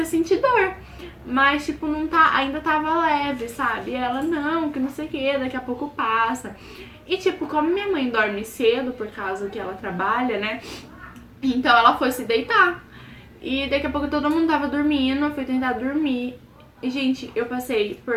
a sentir dor. Mas, tipo, não tá, ainda tava leve, sabe? E ela, não, que não sei o que, daqui a pouco passa. E, tipo, como minha mãe dorme cedo, por causa que ela trabalha, né? Então ela foi se deitar. E daqui a pouco todo mundo tava dormindo, eu fui tentar dormir. E, gente, eu passei por.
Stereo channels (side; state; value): both; identical; correlation 1.00